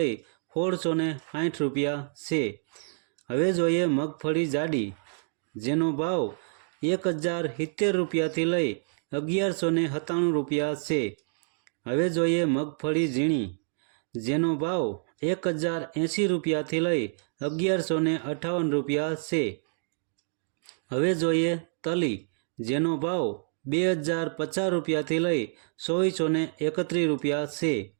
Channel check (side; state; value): left; silent; digital silence